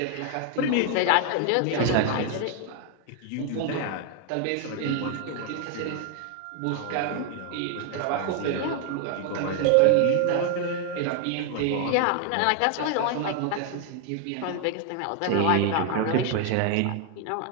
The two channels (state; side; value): different; both; correlation 0.00